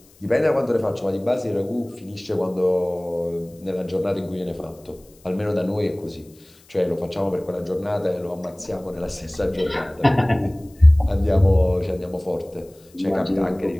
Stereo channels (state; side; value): noise; left; hiss, 29 dB below the sound